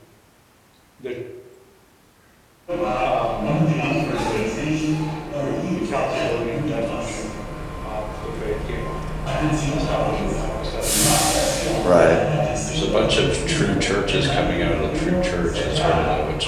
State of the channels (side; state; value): both; identical; correlation 1.00